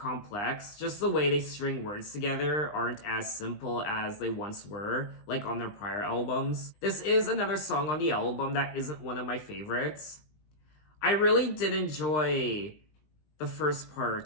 Just the way they string words together aren't as simple as they once were, like on their prior albums. This is another song on the album that isn't one of my favorites. I really did enjoy the first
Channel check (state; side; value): late; right; 20 ms